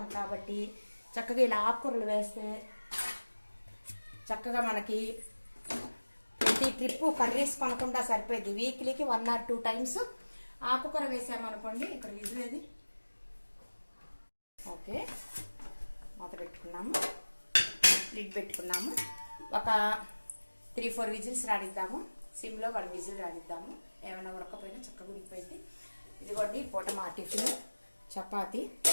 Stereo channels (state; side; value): inverted; both; correlation -1.00